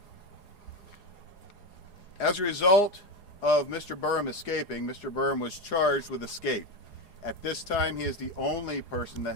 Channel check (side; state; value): right; late; 4.8 ms